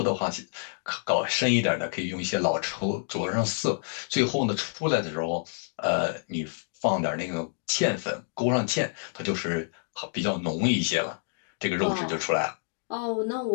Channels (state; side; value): silent; right; digital silence